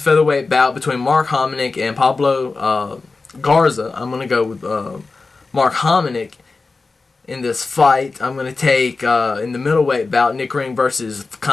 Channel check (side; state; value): right; quieter; 3.9 dB